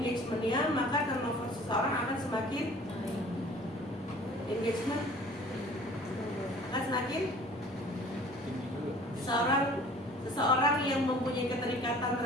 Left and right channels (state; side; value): normal; both; correlation 0.49